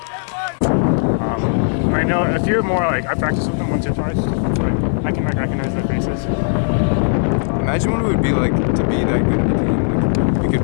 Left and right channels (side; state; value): right; silent; digital silence